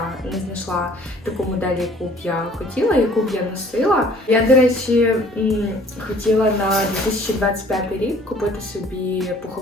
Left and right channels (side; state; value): both; normal; correlation 0.55